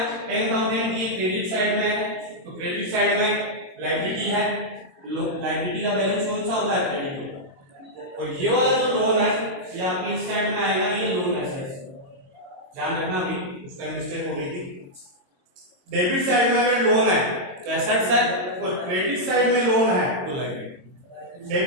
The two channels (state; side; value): late; left; 22 ms